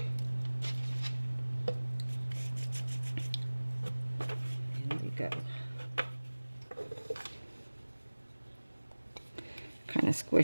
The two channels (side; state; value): both; inverted; correlation -1.00